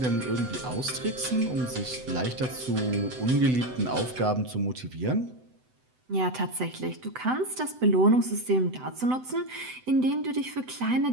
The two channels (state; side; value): late; left; 7.9 ms